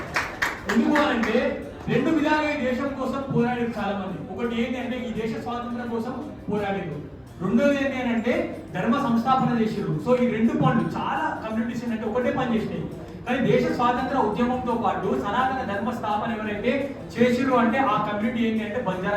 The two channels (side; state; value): both; identical; correlation 1.00